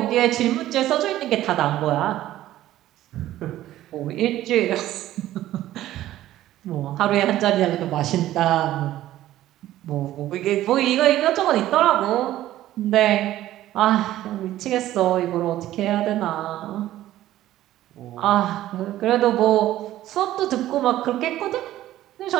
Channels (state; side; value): quieter; left; 14.0 dB